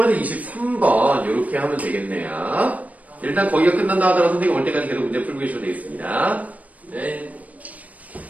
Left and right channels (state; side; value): late; left; 0.071 ms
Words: 23번 이렇게 하면 되겠네요. 일단 거기가 끝난다 하더라도 선생님 올 때까지 계속 문제 풀고 계셔도 되겠습니다. 네.